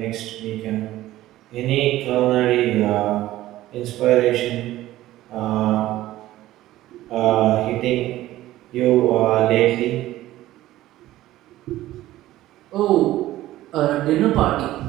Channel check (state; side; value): quieter; left; 15.3 dB